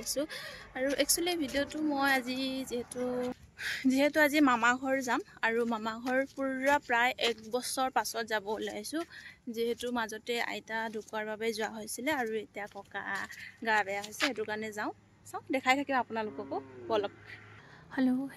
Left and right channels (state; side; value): identical; both; correlation 1.00